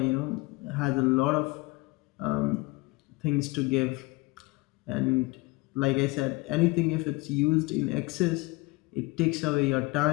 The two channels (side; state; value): right; quieter; 23.7 dB